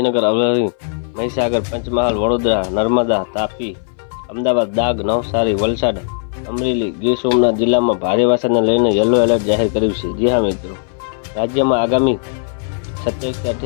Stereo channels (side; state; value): right; silent; 61 dB below the other